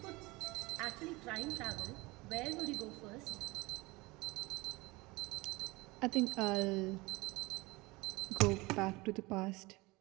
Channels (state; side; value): quieter; left; 22.7 dB